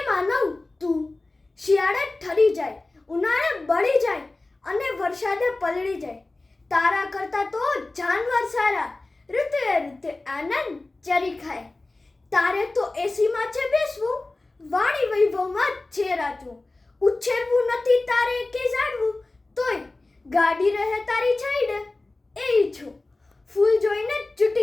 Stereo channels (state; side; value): quieter; right; 3.1 dB